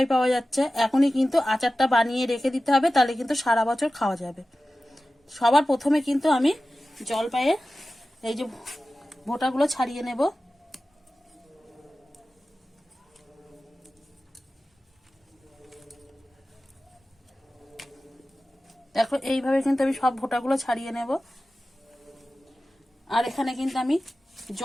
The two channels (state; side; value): normal; both; correlation 0.95